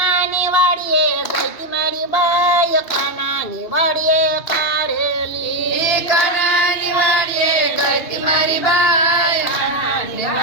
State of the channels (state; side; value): late; right; 2.7 ms